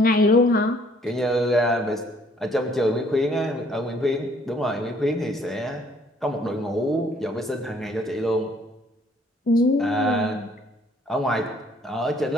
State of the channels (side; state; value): both; normal; correlation 0.61